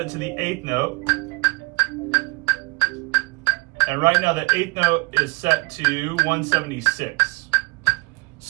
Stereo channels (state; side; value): quieter; left; 26.9 dB